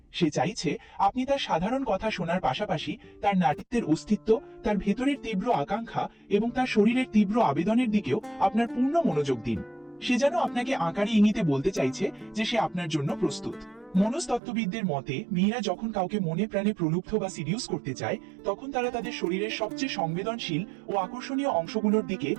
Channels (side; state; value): left; drops out; at 14.4 s